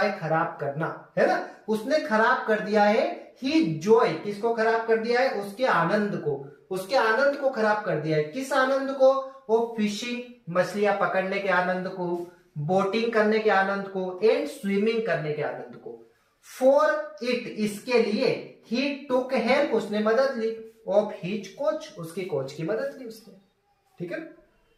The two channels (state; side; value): identical; both; correlation 1.00